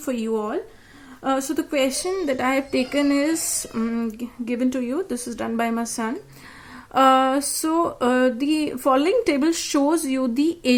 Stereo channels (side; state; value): both; identical; correlation 1.00